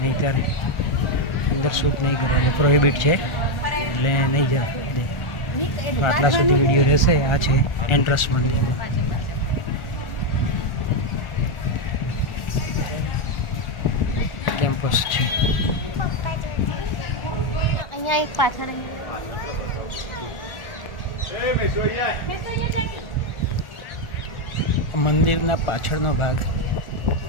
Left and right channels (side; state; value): right; late; 1.4 ms